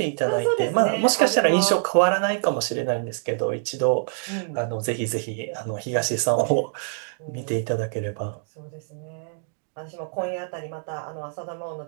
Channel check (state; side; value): silent; left; digital silence